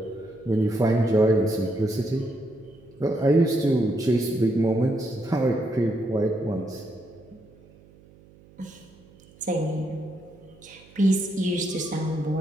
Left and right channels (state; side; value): noise; right; hum, 26 dB below the sound